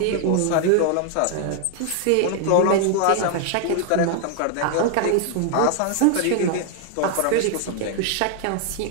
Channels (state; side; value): different; both; correlation 0.00